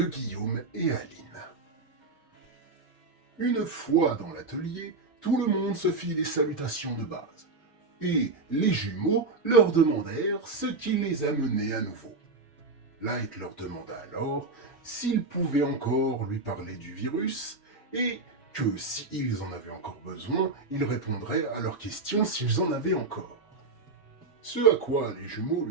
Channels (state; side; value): quieter; left; 3.7 dB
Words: Guillaume et Aline. Une fois dans l'atelier, tout le monde se fit des salutations de base, et les jumeaux leur demandèrent ce qui les amenait à nouveau. Light leur demanda alors s'ils pouvaient encore lui parler du virus, et que s'ils en avaient encore besoin, ils répondraient à leurs questions s'ils en avaient encore. Ce à quoi les jumeaux